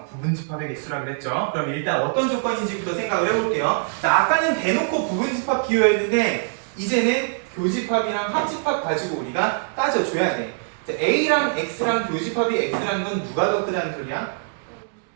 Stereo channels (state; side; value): silent; left; digital silence